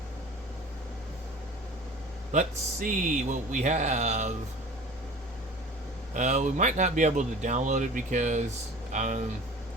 Let's see what we have. We might not be able to download it because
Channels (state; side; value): normal; both; correlation 0.42